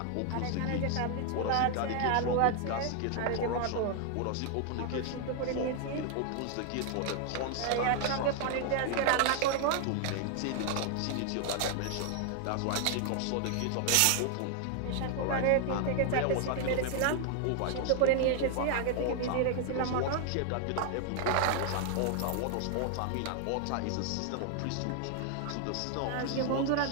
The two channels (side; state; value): both; different; correlation 0.00